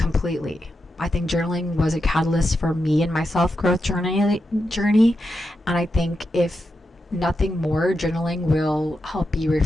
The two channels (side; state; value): both; normal; correlation 0.87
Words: I think journaling was a catalyst for me and my self-growth journey. And I think if nothing more, journaling will help you